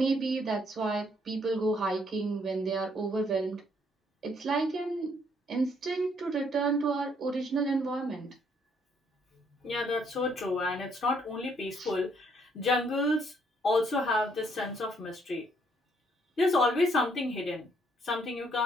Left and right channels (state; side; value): normal; both; correlation 0.68